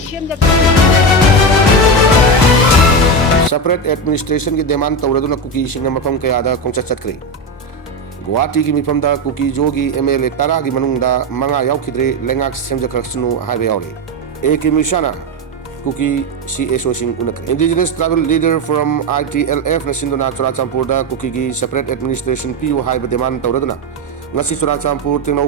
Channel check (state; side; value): normal; both; correlation 0.14